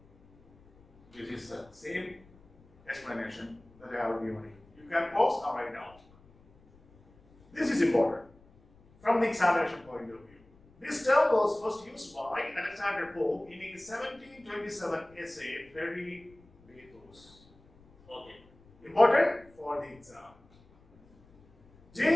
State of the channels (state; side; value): noise; left; rumble, 28 dB below the sound